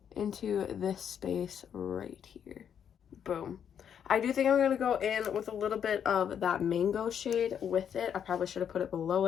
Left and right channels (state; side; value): quieter; right; 8.4 dB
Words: into this space right here. Boom. I do think I'm going to go in with a little bit of that mango shade with it. I probably should have put it below